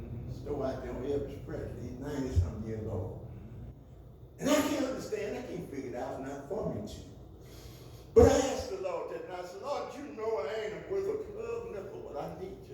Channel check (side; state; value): both; identical; correlation 1.00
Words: Store out there on Elvis Presley. He's 90-something years old. And I can't understand. I can't figure it out. It's not for me to. But I asked the Lord that night. I said, Lord, you know I ain't worth a club nickel, but I need